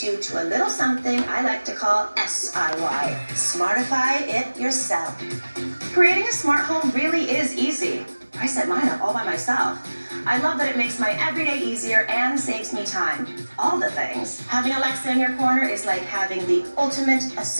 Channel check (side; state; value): both; inverted; correlation -1.00